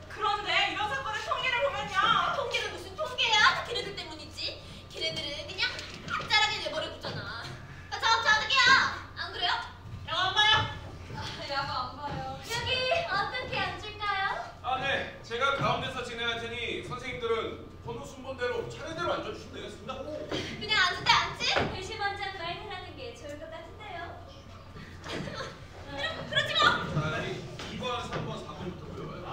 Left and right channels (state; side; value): identical; both; correlation 1.00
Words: 그런데 이런 사건의 통계를 보면요. 통계는 무슨 통계야? 걔네들 때문이지. 걔네들은 그냥 학자라게 내버려 두잖아. 저 어떡해요? 안 그래요? 영화 안 봐요? 야구 안 봐요. 여기 어떻게 앉을까요? 아, 네. 제가 가운데서 진행할 테니 선생님들은 번호 순번대로 차례대로 앉아주시면 되겠습니다. 그냥 앉을 때 앉지? 글씨 먼저 말하는 게 좋을 것 같은데요. 그렇지 뭐. 자, 2번, 3번, 4번부터 외워요.